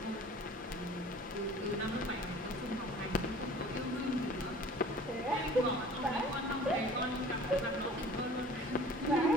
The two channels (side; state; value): both; normal; correlation 0.46